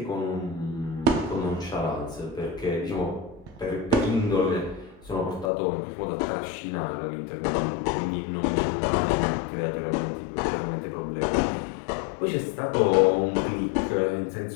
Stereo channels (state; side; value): drops out; right; at 5.5 s